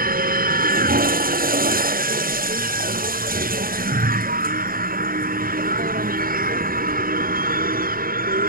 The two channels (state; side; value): late; left; 0.42 ms